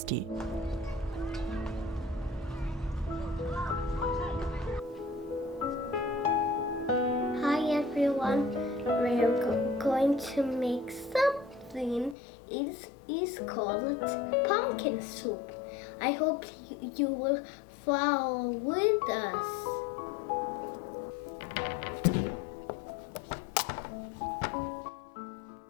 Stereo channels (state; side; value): drops out; right; at 12.2 s